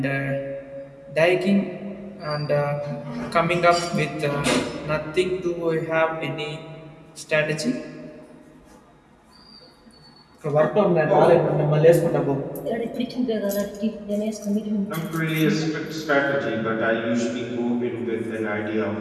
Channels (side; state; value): both; identical; correlation 1.00